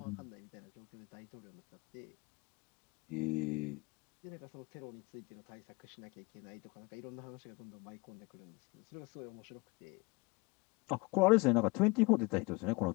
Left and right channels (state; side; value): quieter; right; 26.3 dB